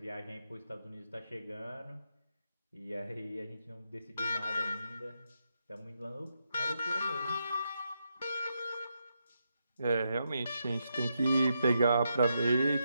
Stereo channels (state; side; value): inverted; both; correlation -0.83